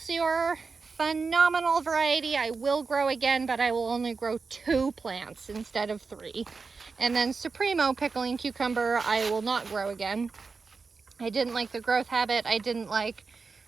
Phenomenal variety. I will grow again, but I will only grow 2 plants instead of 3. And then Supremo pickling cucumber, I will not grow again. I didn't like the growth habit. I didn't like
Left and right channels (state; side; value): quieter; left; 4.6 dB